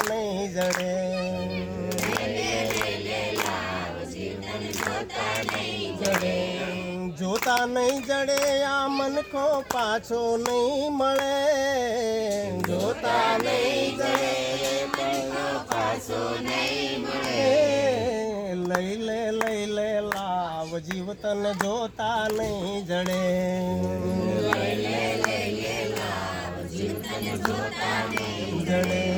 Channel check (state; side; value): identical; both; correlation 1.00